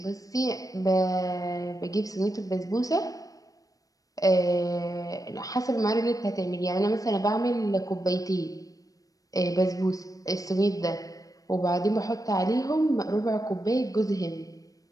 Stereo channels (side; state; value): right; late; 0.17 ms